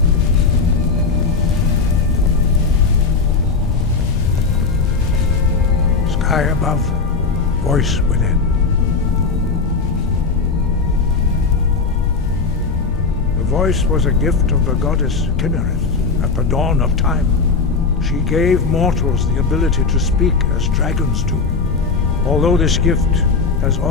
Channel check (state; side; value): quieter; right; 4.6 dB